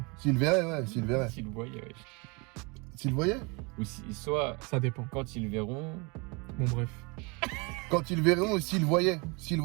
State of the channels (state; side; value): quieter; left; 29.5 dB